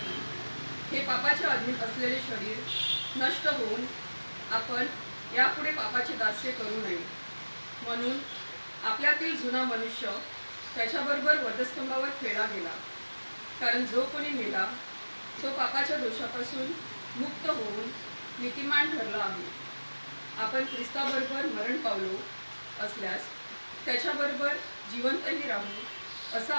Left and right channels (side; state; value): both; inverted; correlation -1.00